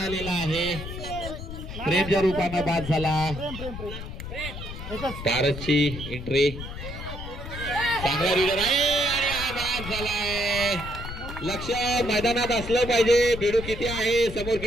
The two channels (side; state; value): left; noise; rumble, 9 dB below the sound